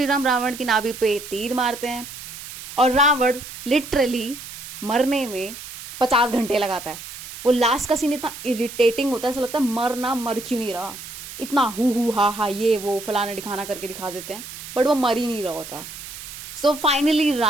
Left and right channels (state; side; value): noise; right; hiss, 12 dB below the sound